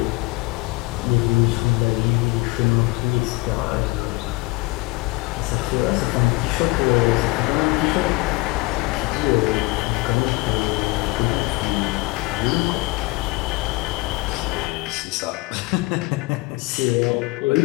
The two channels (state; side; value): quieter; right; 23.6 dB